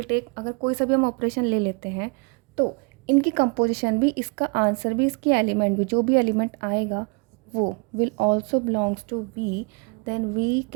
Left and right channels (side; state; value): left; quieter; 31.2 dB